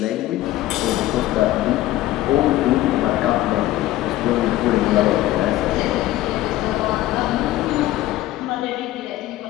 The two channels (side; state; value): right; quieter; 15.4 dB